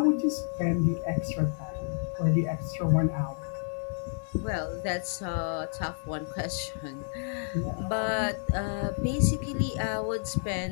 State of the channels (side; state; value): right; silent; digital silence